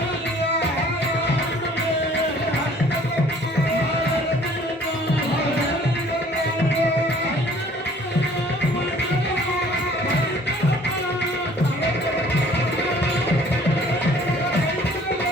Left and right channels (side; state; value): both; normal; correlation 0.55